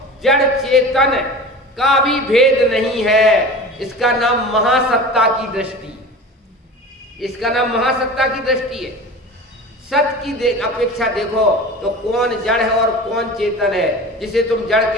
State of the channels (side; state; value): both; normal; correlation 0.35